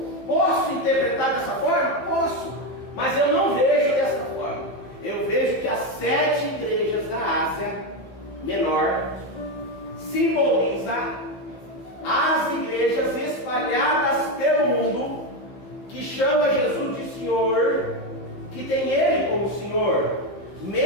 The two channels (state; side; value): late; right; 15 ms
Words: Posso interpretar dessa forma? Posso, mas eu não vejo dessa forma. Eu vejo que as 7 igrejas da Ásia Menor simboliza as igrejas espalhadas pelo mundo que chama Jesus de Senhor, que tem Ele como Senhor,